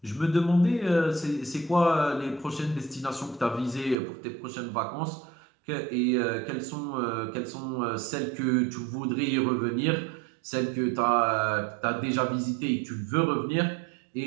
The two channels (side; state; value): left; drops out; at 4.0 s